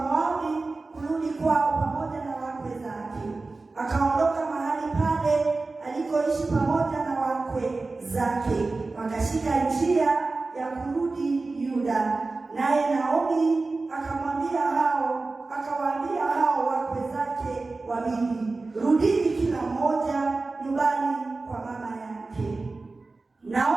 kurudi kwao pamoja na wakwe zake. Akaondoka mahali pale alikoishi pamoja na wakwe zake, wakashika njia ya kurudi Yuda. Naye Naomi akawaambia hao wakwe zake wawili, rudini kila mmoja nyumbani kwa mama yake.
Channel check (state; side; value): quieter; left; 3.6 dB